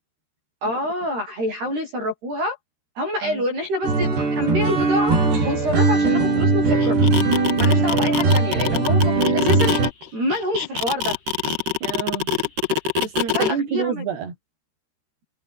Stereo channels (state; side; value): late; left; 13 ms